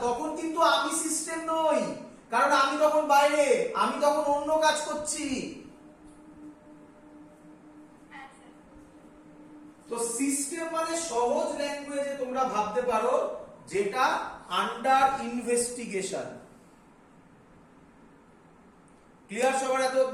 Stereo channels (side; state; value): both; identical; correlation 1.00